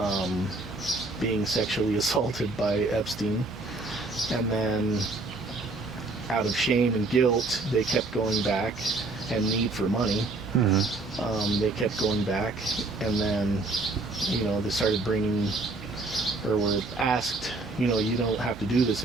being sexually assaulted by Epstein. And then out of shame and guilt, they kept going back, and need for money. Mm-hmm. They kept going back, and then, you know, they started bringing, or were asked, you know, you don't have to do this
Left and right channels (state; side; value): quieter; left; 3.2 dB